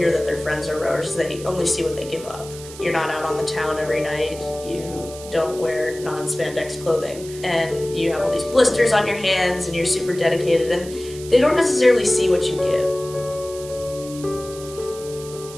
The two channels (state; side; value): noise; right; hiss, 16 dB below the sound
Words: that their friends are rowers, they only see what they give up. You're not out on the town every night, you don't wear non-spandex clothing, and you have all these blisters on your hands, and you're super dedicated, and they don't necessarily see what you give.